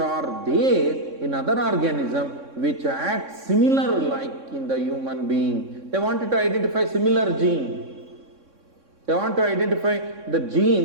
there in other organism which act similar like in the human being. They wanted to identify similar gene. They want to identify the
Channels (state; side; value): late; left; 3.6 ms